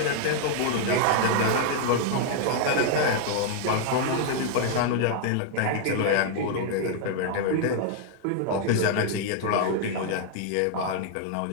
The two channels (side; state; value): both; different; correlation 0.00